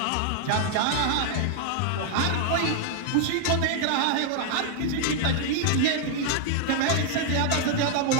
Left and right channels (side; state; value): both; different; correlation 0.00